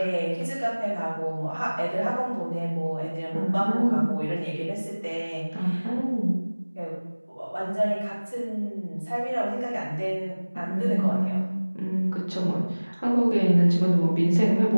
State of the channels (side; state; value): both; inverted; correlation -1.00